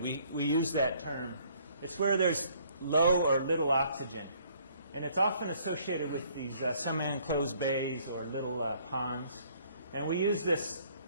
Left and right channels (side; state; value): both; inverted; correlation -0.62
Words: We use that term. It's where there's low or little oxygen. And it's often associated with these semi-enclosed bays or little ponds. And we use this